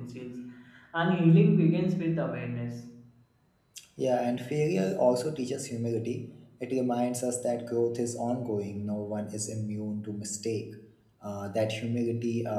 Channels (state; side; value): identical; both; correlation 1.00